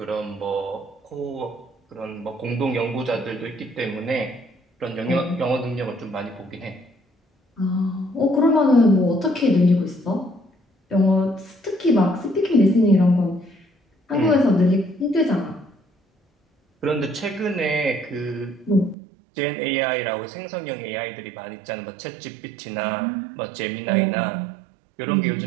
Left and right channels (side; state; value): left; drops out; at 18.9 s